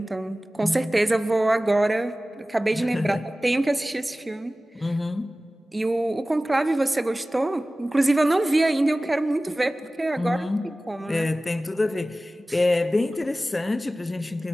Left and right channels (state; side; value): normal; both; correlation 0.97